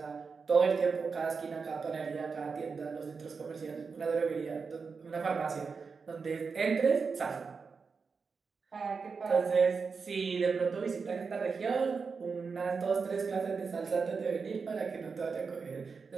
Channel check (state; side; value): quieter; left; 5.1 dB